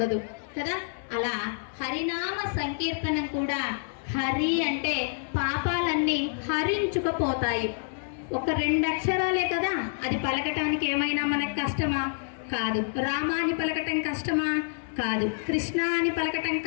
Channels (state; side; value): silent; right; 59 dB below the other